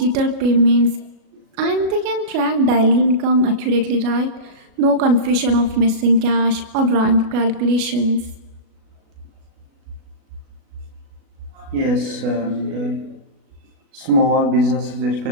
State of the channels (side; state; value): left; late; 37 ms